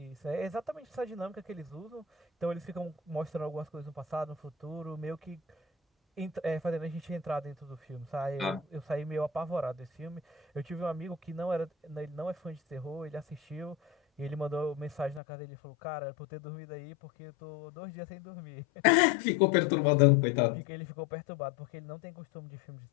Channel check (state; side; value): drops out; right; at 15.2 s